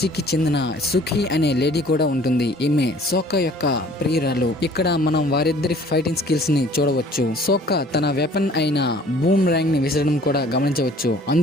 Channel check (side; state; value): both; normal; correlation 0.53